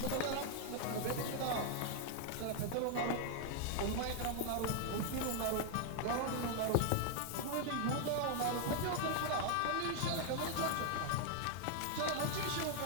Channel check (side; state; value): both; different; correlation 0.00